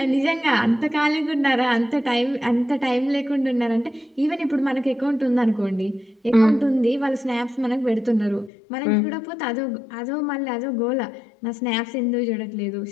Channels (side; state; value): right; drops out; at 8.5 s